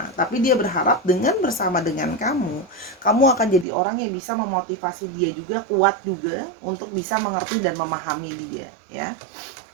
tapi dia berharap dengan bersama dengan kamu akan jadi orang yang bisa memotivasi dia juga, kuat juga untuk bisa mengerti dan memahami dia ya.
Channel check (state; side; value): drops out; left; at 3.7 s